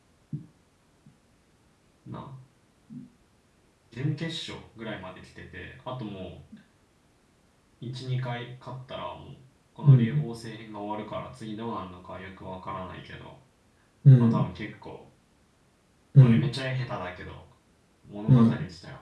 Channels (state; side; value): identical; both; correlation 1.00